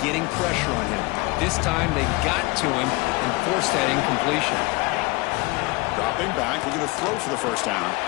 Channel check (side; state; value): right; quieter; 23.8 dB